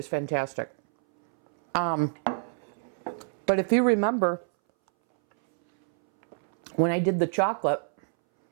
fantastic. But if you remember, when I did the chocolate,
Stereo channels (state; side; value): silent; left; 60 dB below the other